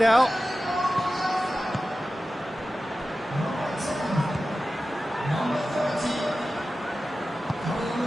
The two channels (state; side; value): normal; both; correlation 0.94